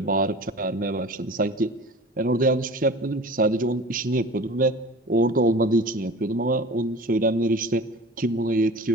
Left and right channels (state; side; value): normal; both; correlation 0.39